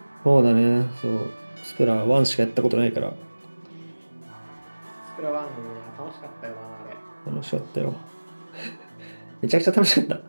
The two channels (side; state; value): both; inverted; correlation -1.00